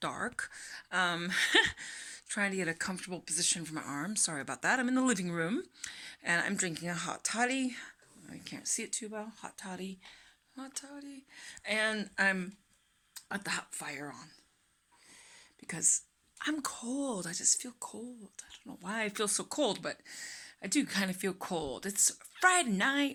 Um, Trying to get a comfortable position for my arms. Sorry about that. I'm in the living room and I'm drinking a hot toddy. I can't see it too well. Hot toddy. Hot toddy. And I'm at the hot fire on because I'm cold. I just feel cold. I don't know why I feel so cold, but I do kind of feel cold. It's Friday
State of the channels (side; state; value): both; identical; correlation 1.00